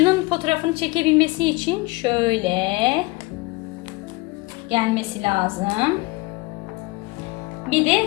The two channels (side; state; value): right; quieter; 23.5 dB